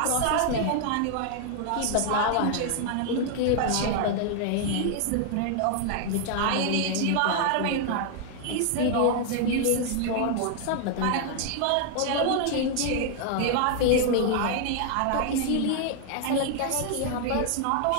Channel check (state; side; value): different; both; correlation 0.00